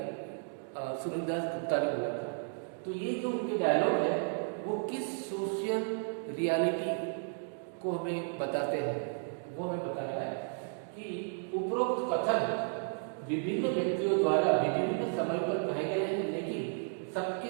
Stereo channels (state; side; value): silent; left; 55 dB below the other